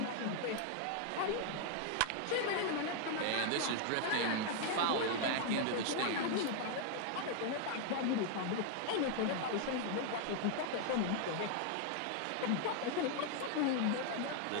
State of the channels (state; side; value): different; both; correlation 0.00